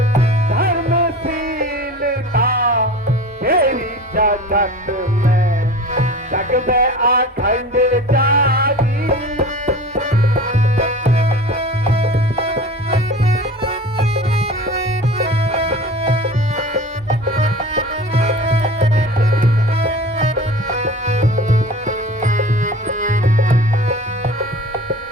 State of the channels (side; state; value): both; normal; correlation 0.37